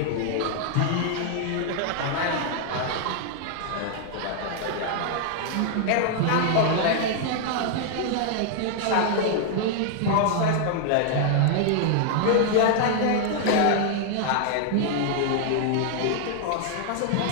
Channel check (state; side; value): different; both; correlation 0.00